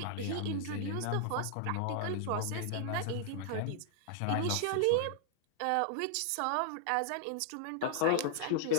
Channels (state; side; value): different; both; correlation -0.01